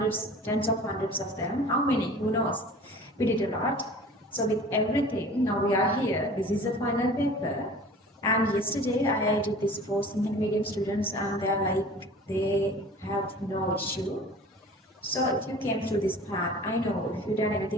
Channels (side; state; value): both; normal; correlation 0.43